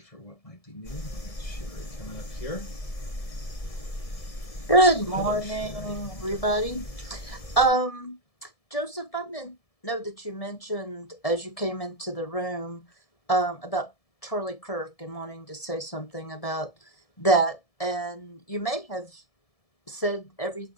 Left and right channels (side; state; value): right; late; 1.7 ms